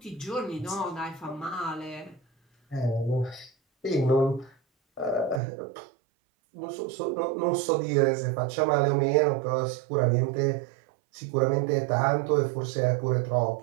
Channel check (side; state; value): left; drops out; at 5.4 s